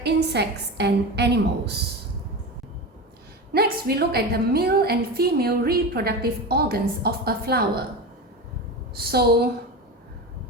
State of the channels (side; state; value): both; normal; correlation 0.24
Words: insects and animals. Next, we look at the male and female reproductive organs of a flower. So